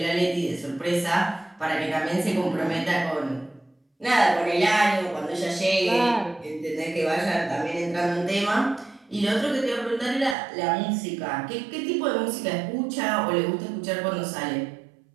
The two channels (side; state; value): left; drops out; at 10.4 s